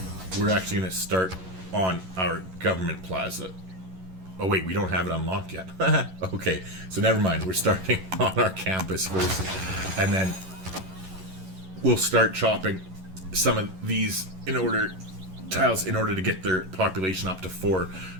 We're actually going to start on our government plaza. Oh wait, we don't have it unlocked yet. Okay, so never mind. We're starting on our campus first. And then we'll start chopping some of these tiles in order to get their population up to 4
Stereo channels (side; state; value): left; late; 11 ms